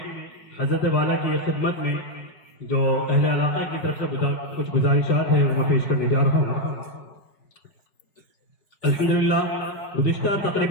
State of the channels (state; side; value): late; right; 4.7 ms